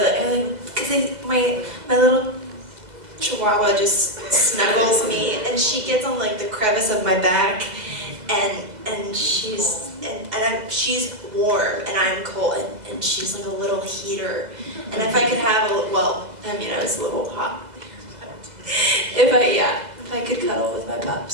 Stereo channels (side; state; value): left; late; 2.0 ms